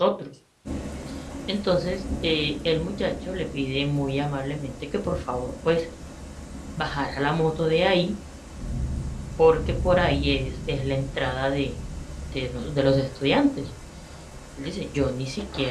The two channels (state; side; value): identical; both; correlation 1.00